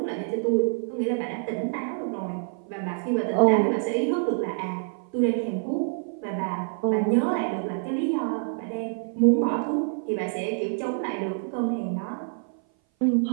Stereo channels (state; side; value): silent; left; 57 dB below the other